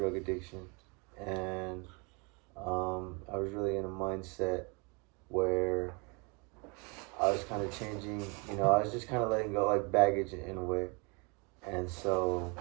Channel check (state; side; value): quieter; left; 31.4 dB